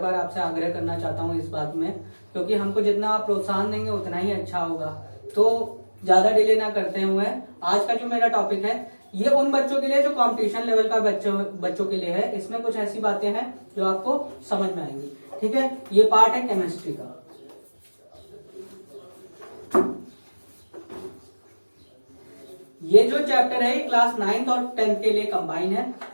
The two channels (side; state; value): both; inverted; correlation -1.00